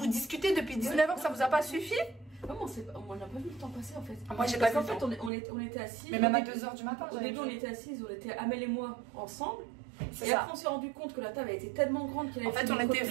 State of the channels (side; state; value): left; drops out; at 5.3 s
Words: discutez depuis 19 h, ça vous a pas suffi? Comment on n'a pas vu le temps passer en fait. Moi j'ai pas vu le temps. En fait on était assis. Mais même à 2 h du matin. Au début on était assis, on était Amel et moi ensemble. Et ça. après on s'est rendu compte que la table a été tellement grande qu'elle en fait on était